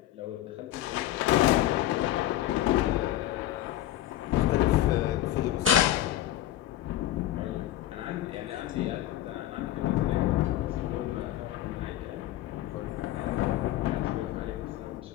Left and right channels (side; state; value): right; quieter; 13.5 dB